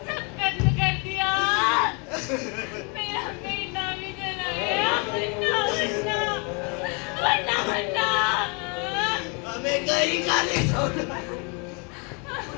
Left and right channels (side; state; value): right; quieter; 33.5 dB